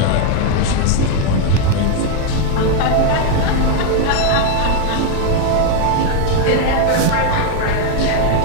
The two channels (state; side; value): different; both; correlation 0.01